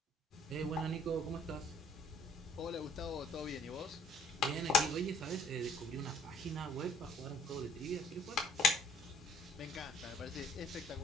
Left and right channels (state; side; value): normal; both; correlation 0.61